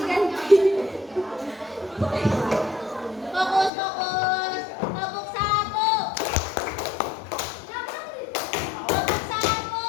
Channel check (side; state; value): right; drops out; at 3.7 s